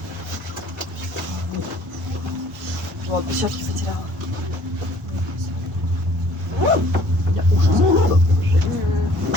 Вот, перчатки потеряла. Я ужас.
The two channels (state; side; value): normal; both; correlation 0.55